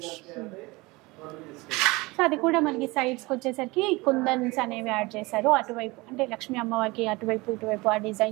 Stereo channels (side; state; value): left; quieter; 23.2 dB